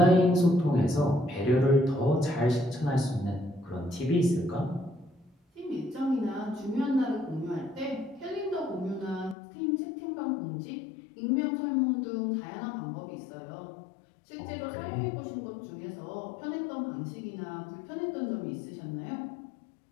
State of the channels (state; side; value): drops out; right; at 9.3 s